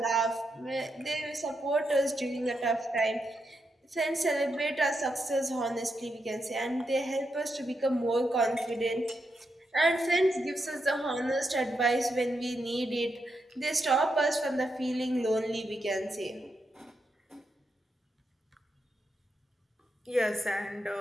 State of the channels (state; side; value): normal; both; correlation 0.83